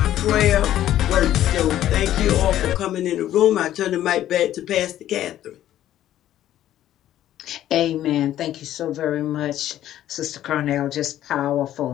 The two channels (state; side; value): quieter; right; 12.4 dB